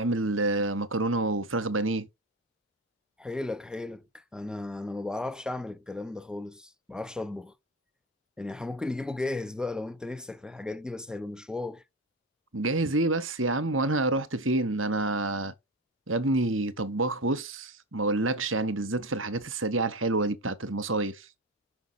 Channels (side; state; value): both; normal; correlation 0.21